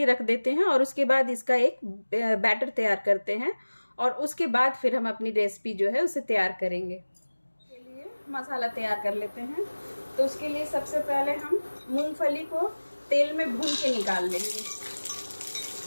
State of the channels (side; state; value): both; inverted; correlation -1.00